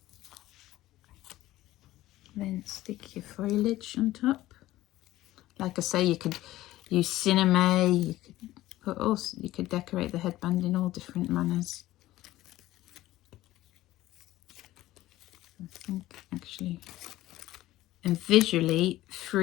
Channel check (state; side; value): quieter; right; 15.9 dB